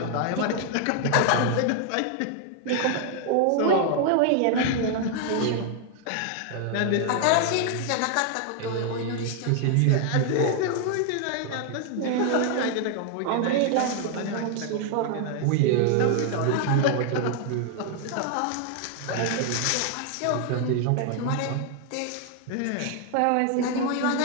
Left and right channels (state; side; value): different; both; correlation 0.00